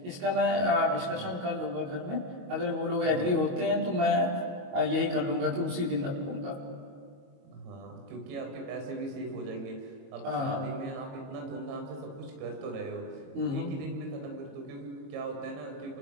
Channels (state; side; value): late; left; 22 ms